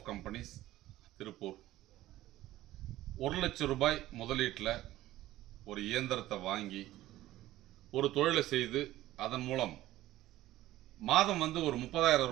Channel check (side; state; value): left; quieter; 15.4 dB